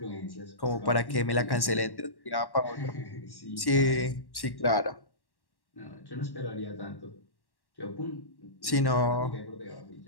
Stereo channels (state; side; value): late; right; 1.1 ms